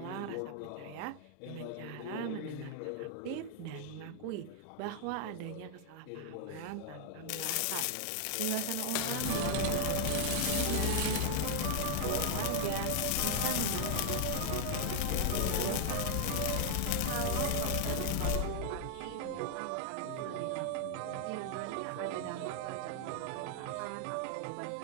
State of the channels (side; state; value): both; different; correlation 0.00